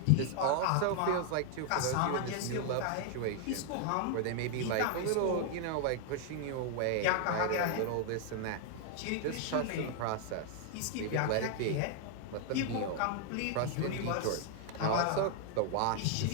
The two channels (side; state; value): both; different; correlation 0.00